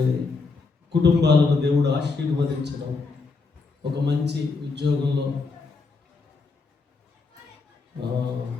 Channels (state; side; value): quieter; right; 4.2 dB